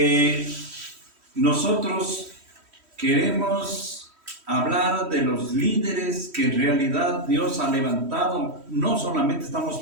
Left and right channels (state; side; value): late; left; 3.1 ms